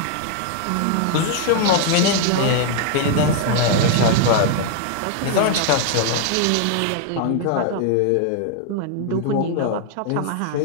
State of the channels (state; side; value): different; both; correlation 0.00